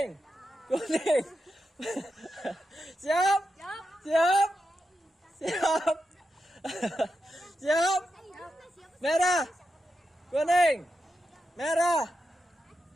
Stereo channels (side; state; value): both; normal; correlation 0.87